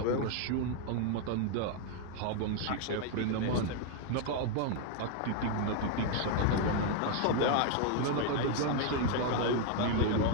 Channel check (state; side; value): different; both; correlation 0.01